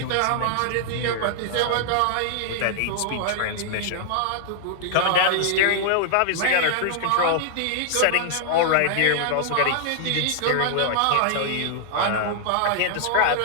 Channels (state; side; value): different; both; correlation -0.01